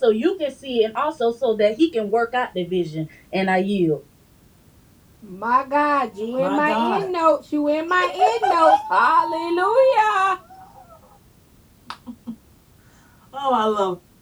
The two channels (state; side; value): identical; both; correlation 1.00